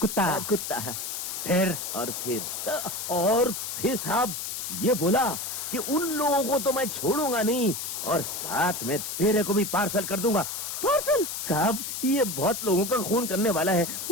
कुत्ता? कुत्ता। फिर? और फिर साहब ये बोला कि उन लोगों को तो मैं छोड़ूंगा नहीं, और साथ में तेरे को भी पार्सल कर दूंगा। पार्सल? साहब ये बहुत लोगों का खून करने वाला है।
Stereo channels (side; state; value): left; noise; hiss, 5 dB below the sound